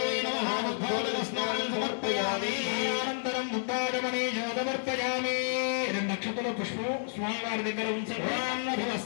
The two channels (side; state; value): right; silent; 57 dB below the other